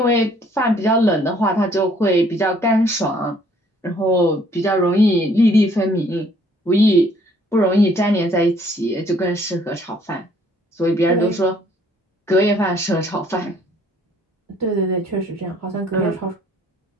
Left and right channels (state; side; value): normal; both; correlation 0.62